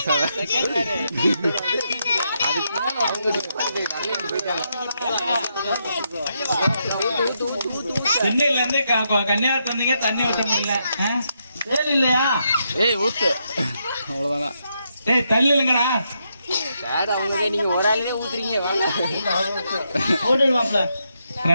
ஆக. சென்னையில இருந்து கன்னியாகுமரி வந்தீங்க, தண்ணி ஊற்ற முடியல. வேலை இல்லையா? ஏய் ஊத்து, அவ்வளவுதான். ஏய் தள்ளி இல்லைங்கடா. நீங்க ஒரு ஆளுமே ஊத்துறீங்க.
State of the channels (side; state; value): both; inverted; correlation -0.80